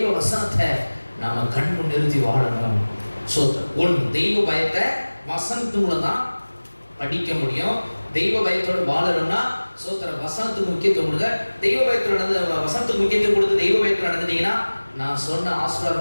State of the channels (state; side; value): inverted; both; correlation -1.00